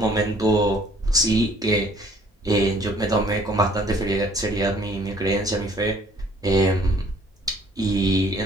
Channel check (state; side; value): normal; both; correlation 0.58